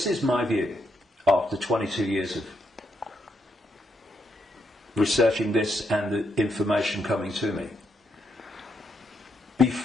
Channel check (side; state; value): both; normal; correlation 0.79